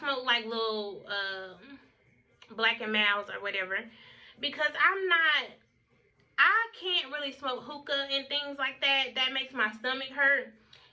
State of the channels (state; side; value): identical; both; correlation 1.00